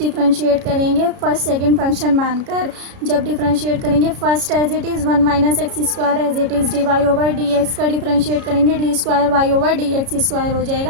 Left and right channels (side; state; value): left; late; 33 ms